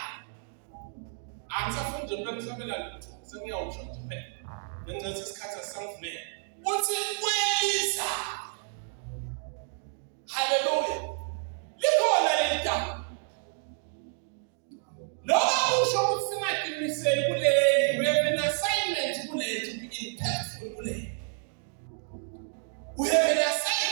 Angisafunda ukusabela lutho. Sengiyawusho nje phela. Ngenxa isikhathi asangivumela. Uthi kweliza. Hallelujah. Likhona leli gama. Noma usho ukuthi singaqiniseli kuleli, we have an assignment kuleli to be impactful kuleli. We have an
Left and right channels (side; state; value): left; silent; 58 dB below the other